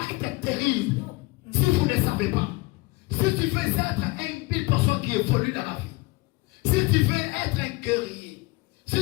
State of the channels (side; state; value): right; quieter; 23.7 dB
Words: terrible. Si vous ne savez pas, si tu veux être une personne qui évolue dans la vie, si tu veux être un guerrier,